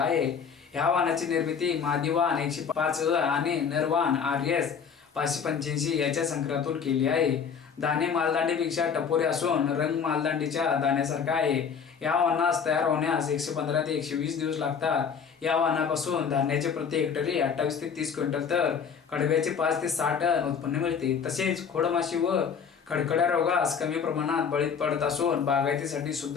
ह्या वाहनाची निर्मिती मादी वाहन 105 आणि नरवाहन RS 585 याच्या संकरातून केली आहे. दाणे मालदांडीपेक्षा टपोरे असून रंग मालदांडीच्या दाण्यासारखा आहे. या वाहनास तयार होण्यास 115 ते 120 दिवस लागतात. या वाहनापासून धान्याचे प्रति हेक्टरी 28 ते 30 क्विंटल तर कडब्याचे 5 ते 6 टन उत्पन्न मिळते. तसेच खोडमाशी व खडखड्या रोगास कमी प्रमाणात बळी पडत असून बागायतीसाठी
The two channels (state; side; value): quieter; right; 6.6 dB